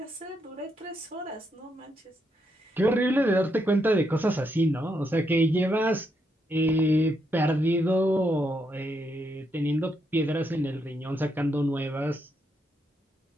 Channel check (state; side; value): normal; both; correlation 0.79